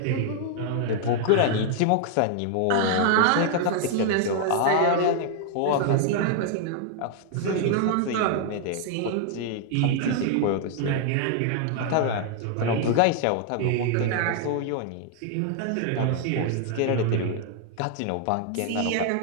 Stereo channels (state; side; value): different; both; correlation 0.00